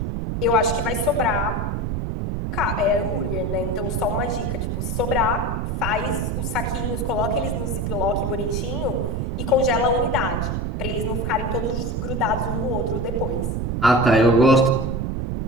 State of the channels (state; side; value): noise; right; rumble, 1 dB below the sound